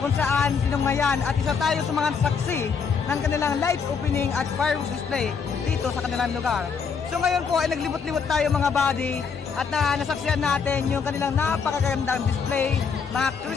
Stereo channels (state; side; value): quieter; right; 6.0 dB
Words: saan sinungayan at isa tayo sa mga saksi ng kanilang lights opening at fireworks display dito sa kanilang lugar. So ngayon po ay naglibot-libot tayo mga buddy at nasaksihan natin yung kanilang napakagandang display, mga